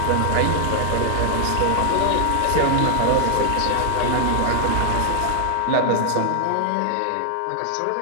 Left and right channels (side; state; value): both; different; correlation 0.00